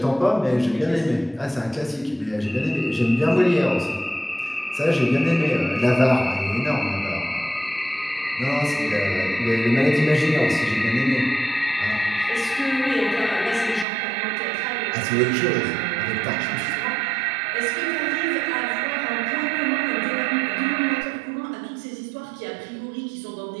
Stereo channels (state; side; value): drops out; left; at 13.9 s